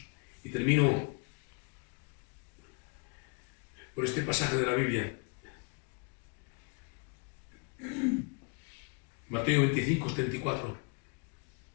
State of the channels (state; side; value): quieter; right; 34.0 dB